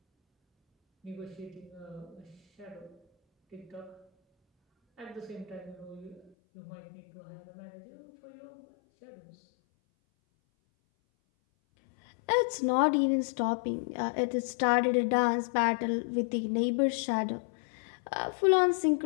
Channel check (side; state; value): right; drops out; at 6.3 s